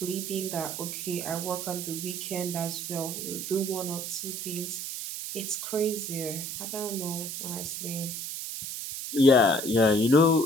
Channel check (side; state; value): right; noise; hiss, 6 dB below the sound